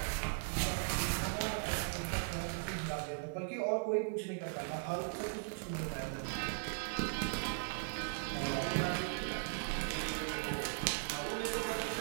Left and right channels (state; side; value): silent; left; 52 dB below the other